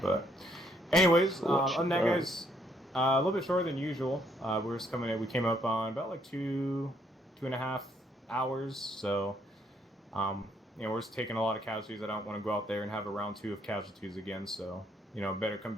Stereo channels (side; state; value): both; normal; correlation 0.70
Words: but... Anyways, other than that, guys, a little bit shorter than usual. We're just coming in. We came up on about like 2.5 hours, so... we're just taking a lot of casualties. I don't want to go out there and have a round 2 of casualties again, so, better come